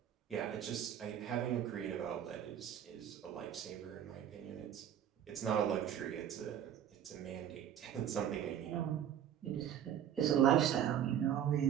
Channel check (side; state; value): left; quieter; 10.0 dB